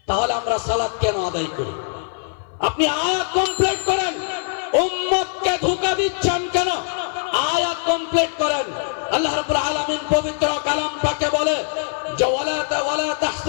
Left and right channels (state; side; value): silent; right; 56 dB below the other